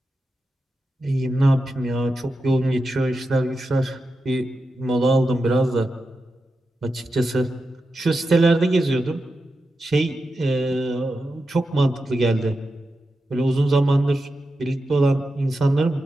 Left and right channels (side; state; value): both; normal; correlation 0.90